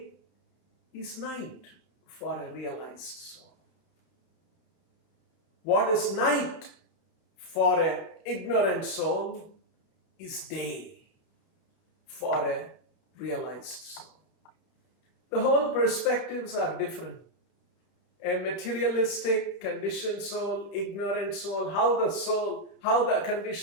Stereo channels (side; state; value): right; late; 31 ms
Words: is night for a realized soul. What is night for an ignorant soul is day for a realized soul. The whole perspectives are different. A materialistic, conditioned soul, ignorant soul, how the